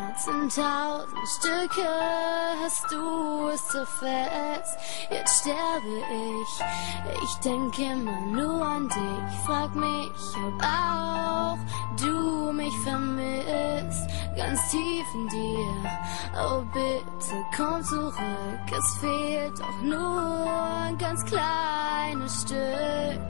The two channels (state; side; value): silent; right; 58 dB below the other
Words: in 1000 Stücke, hast du es so fest, jetzt sterbe ich. Ich denke immer nur an dich, frag mich, ob auch du mich vermisst, ganz tief in dir. Oh bitte komm zurück, es fehlt doch nur ein ganz kleines Stück.